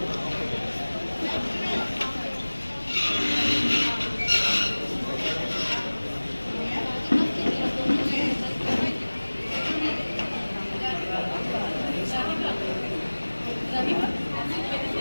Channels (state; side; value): inverted; both; correlation -1.00